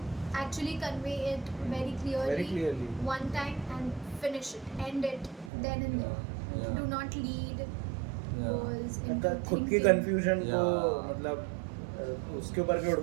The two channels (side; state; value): left; drops out; at 5.5 s